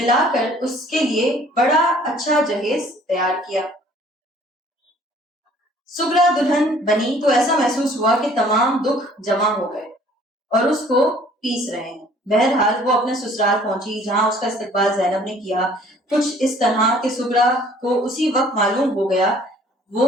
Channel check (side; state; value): both; normal; correlation 0.55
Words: کر اس کے لیے بڑا اچھا جہیز تیار کیا. سغرا دلہن بنی تو ایسا محسوس ہوا کہ تمام دکھ جمع ہو گئے اور اس کو پیس رہے ہیں. بہرحال وہ اپنے سسرال پہنچی جہاں اس کا استقبال زینب نے کیا. کچھ اس طرح کہ سغرا کو اسی وقت معلوم ہو گیا